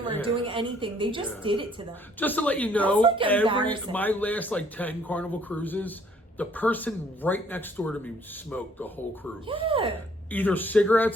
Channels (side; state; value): both; normal; correlation 0.62